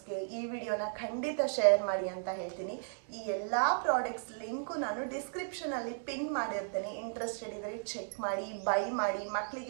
ಈ ವಿಡಿಯೋನ ಖಂಡಿತ ಶೇರ್ ಮಾಡಿ ಅಂತ ಹೇಳ್ತೀನಿ. ಈ ಎಲ್ಲ ಪ್ರಾಡಕ್ಟ್ಸ್ ಲಿಂಕು ನಾನು ಡಿಸ್ಕ್ರಿಪ್ಷನಲ್ಲಿ ಪಿನ್ ಮಾಡಿರ್ತೇನೆ. ಇಂಟ್ರೆಸ್ಟೆಡ್ ಇದ್ದರೆ ಚೆಕ್ ಮಾಡಿ, ಬೈ ಮಾಡಿ,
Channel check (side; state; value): left; silent; digital silence